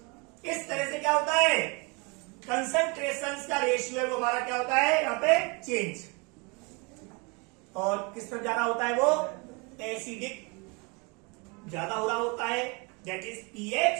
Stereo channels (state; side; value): quieter; left; 30.5 dB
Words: इस तरह से क्या होता है, कंसंट्रेशन का रेशियो है वो हमारा क्या होता है यहाँ पे चेंज, और किस तरफ जा रहा होता है वो एसिडिक ज्यादा हो रहा होता है, दैट इज पीएच